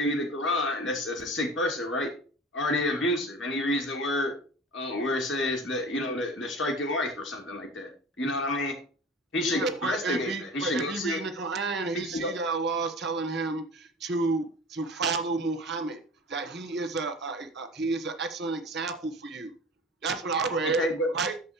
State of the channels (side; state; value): both; normal; correlation 0.38